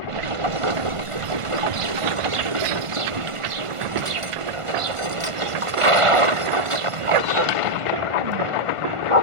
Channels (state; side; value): late; left; 1.5 ms